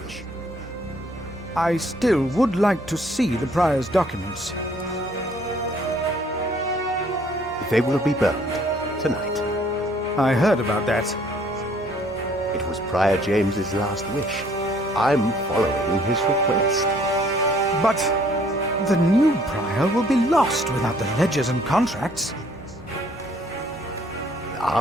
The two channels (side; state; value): both; normal; correlation 0.61